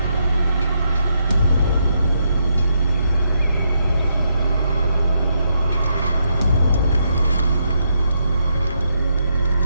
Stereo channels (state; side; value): inverted; both; correlation -0.78